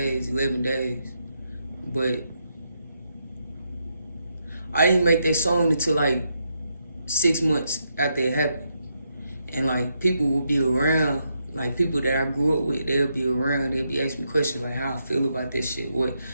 11 days. But I didn't make that song until like 6 months after it happened. And like people will be around, like people that I grew up with, they'll be around, they'll be asking me questions like how I feel about this shit,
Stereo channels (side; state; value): both; inverted; correlation -0.80